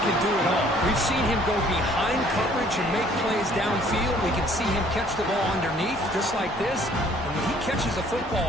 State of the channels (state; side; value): normal; both; correlation 0.58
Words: can do it all. We've seen him go behind coverage and make plays downfield. We can see him catch the ball underneath, just like this. And when he catches a